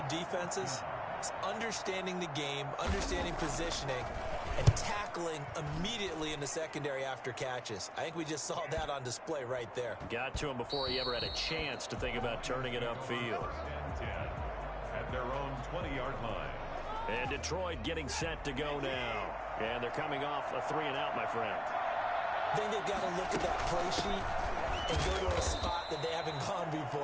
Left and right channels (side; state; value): both; identical; correlation 1.00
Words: defenses is understanding the game, understanding positioning, and tackling immediately in the secondary after catches. I think we just saw that on display right there. Got to him before he ever had a chance to think about turning it upfield. At their own 20-yard line. And Detroit getting set to go now. And they're coming off a 3-and-out, my friend. I think they've got to look at that play sheet and go to a spot that they haven't gone